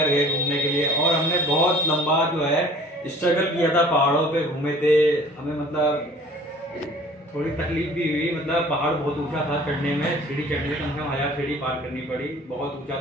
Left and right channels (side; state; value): both; normal; correlation 0.49